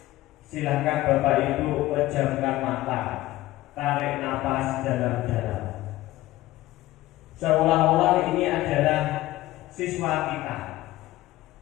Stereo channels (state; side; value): quieter; right; 16.8 dB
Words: silakan Bapak Ibu pejamkan mata, tarik napas dalam-dalam, seolah-olah ini adalah siswa kita.